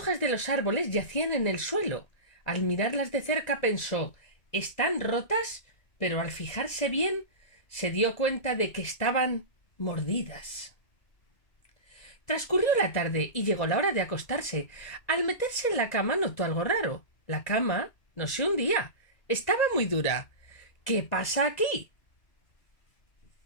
de los árboles yacían en el suelo. Al mirarlas de cerca pensó «¿Están rotas?», pero al fijarse bien se dio cuenta de que estaban mordidas. Transcurrió la tarde y llegó la hora de acostarse. Al meterse en la cama notó algo raro. La cama no se hundía. Estaba muy dura. ¿Qué pasa aquí?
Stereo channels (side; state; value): right; late; 2.0 ms